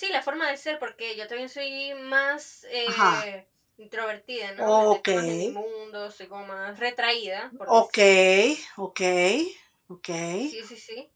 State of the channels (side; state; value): both; identical; correlation 1.00